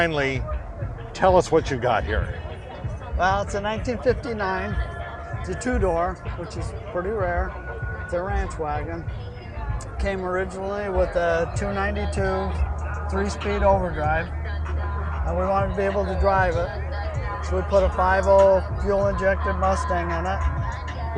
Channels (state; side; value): identical; both; correlation 1.00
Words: tell us what you got here. Well, it's a 1959. It's a two-door, which is pretty rare. It's a Ranch Wagon. Came originally with a 292 3-speed overdrive, and we wanted to be able to drive it. So we put a 5.0 fuel-injected Mustang in it.